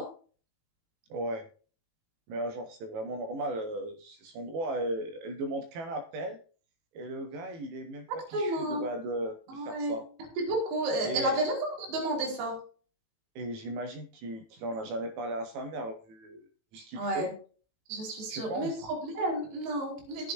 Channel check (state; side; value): late; left; 18 ms